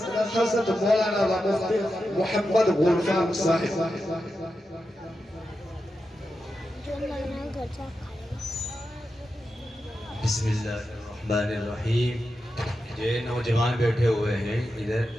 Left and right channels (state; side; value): normal; both; correlation 0.89